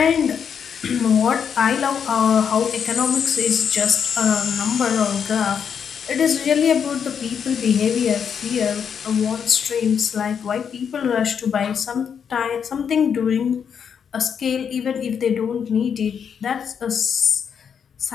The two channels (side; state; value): right; quieter; 7.3 dB